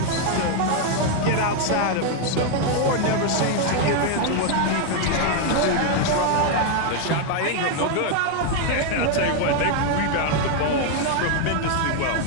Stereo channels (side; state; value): both; different; correlation 0.01